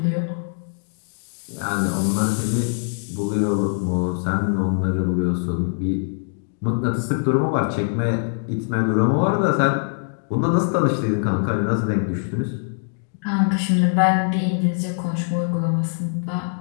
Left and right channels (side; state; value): right; silent; digital silence